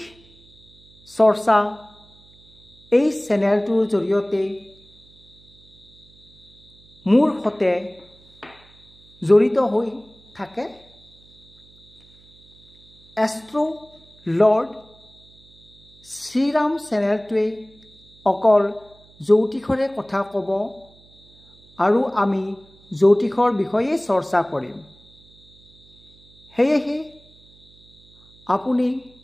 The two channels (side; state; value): right; noise; hum, 28 dB below the sound